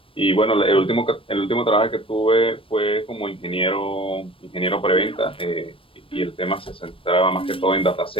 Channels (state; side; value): late; right; 0.26 ms